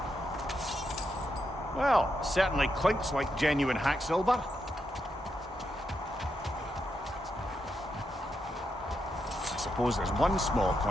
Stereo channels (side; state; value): both; normal; correlation 0.83